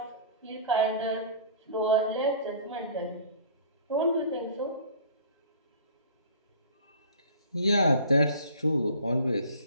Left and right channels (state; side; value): inverted; both; correlation -0.45